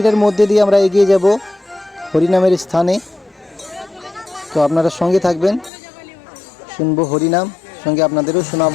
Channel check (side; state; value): right; drops out; at 5.7 s